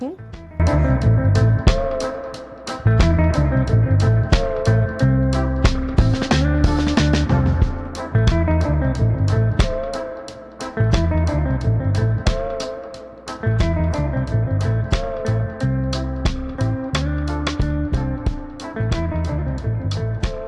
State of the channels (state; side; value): identical; both; correlation 1.00